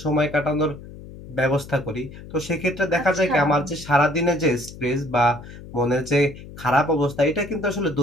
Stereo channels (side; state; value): left; noise; hum, 15 dB below the sound